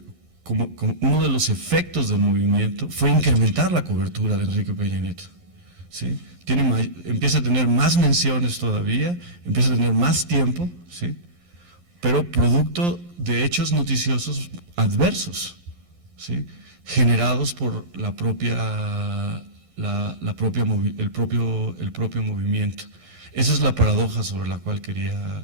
uno de los efectos del movimiento fue incrementar la cobertura de Enrique Peña Nieto, ¿sí? Empieza a tener más menciones todavía, empieza a tener más tiempo, ¿sí?, pero producto de hechos noticiosos adversos, ¿sí?, generados por el propio movimiento. Esa es la paradoja sobre la cual quería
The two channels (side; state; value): left; late; 11 ms